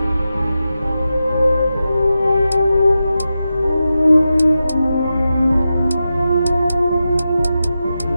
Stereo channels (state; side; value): inverted; both; correlation -0.91